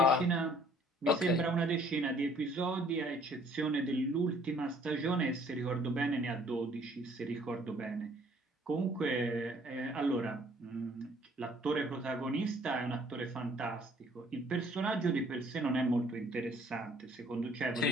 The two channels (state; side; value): normal; both; correlation 0.59